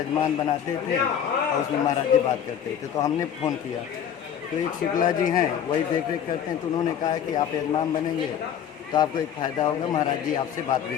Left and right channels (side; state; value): right; quieter; 8.9 dB